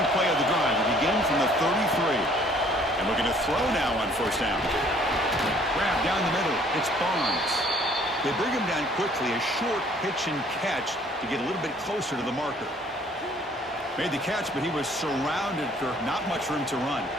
play of the drive. We begin from the 33. And looking to throw now on first down. Grab down the middle. It's Barnes. They bring him down quickly. A short pitch and catch to get a little bit closer to the marker. Made the catch, but he was surrounded for not much room to run.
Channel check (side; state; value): both; normal; correlation 0.58